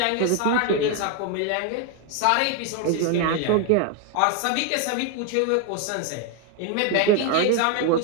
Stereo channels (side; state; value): both; different; correlation 0.01